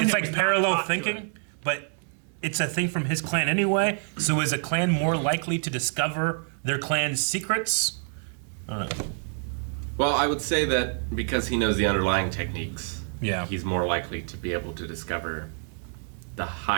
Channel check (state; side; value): silent; left; 56 dB below the other